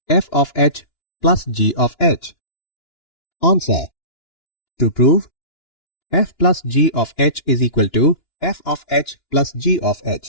f of h plus g of h. Answer. To prove f plus g of h is equal to f of h plus g of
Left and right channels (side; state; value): right; late; 2.9 ms